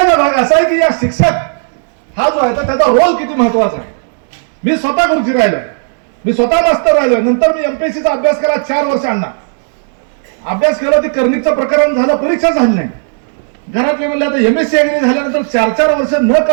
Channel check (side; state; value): left; silent; digital silence